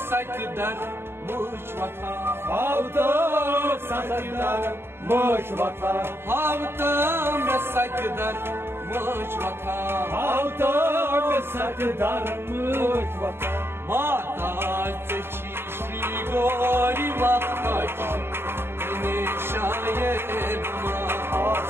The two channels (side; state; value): left; late; 0.11 ms